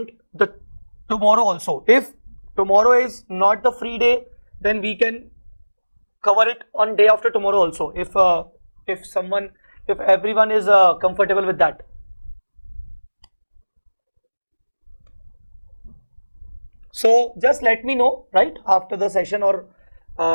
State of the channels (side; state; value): both; inverted; correlation -1.00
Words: the tomorrow also. If tomorrow is not the free day, then we can cover it on day after tomorrow also, if everyone is comfortable with that. So just let me know right after the session or